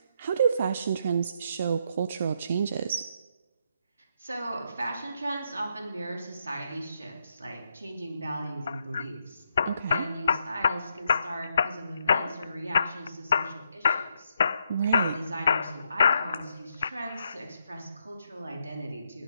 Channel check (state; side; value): inverted; both; correlation -0.79